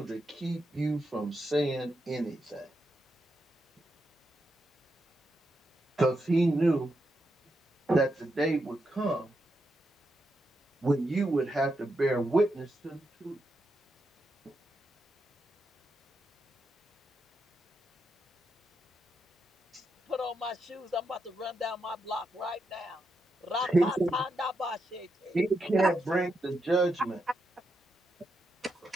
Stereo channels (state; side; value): normal; both; correlation 0.84